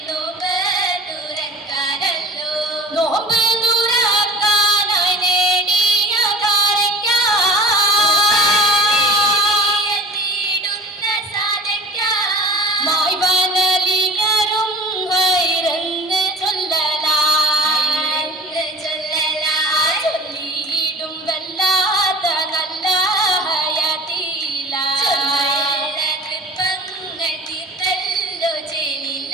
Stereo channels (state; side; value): normal; both; correlation 0.41